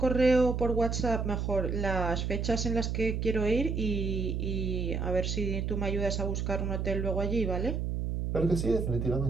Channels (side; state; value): right; noise; hum, 1 dB below the sound